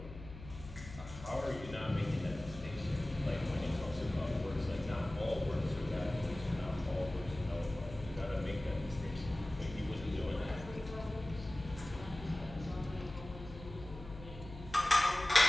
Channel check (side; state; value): left; noise; hum, 13 dB below the sound